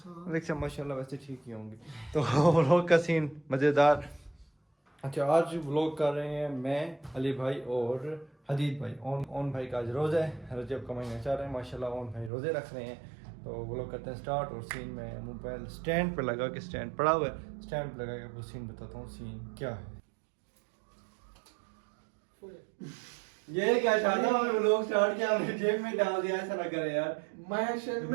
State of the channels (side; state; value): left; drops out; at 12.3 s